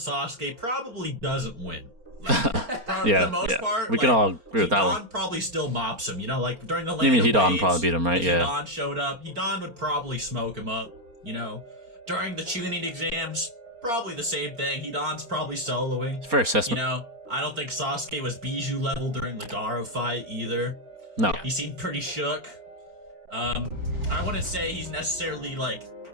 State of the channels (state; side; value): late; left; 4.3 ms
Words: probably doesn't win. For the most part, we can all agree with that one. Hidan probably still mops him. During the you mean Hidan waves, probably beat him, right? Yeah. Hidan showed up. Hidan would probably smoke him up. During the Chunin exams, probably the same thing. Hidan's probably soloing. Fair assessment. I don't think Sasuke was Bijou level during the Garo fight either. No. He seemed pretty shook. I wouldn't say he's necessarily